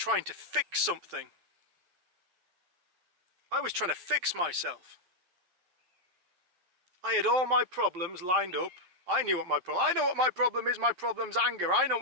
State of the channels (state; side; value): late; left; 11 ms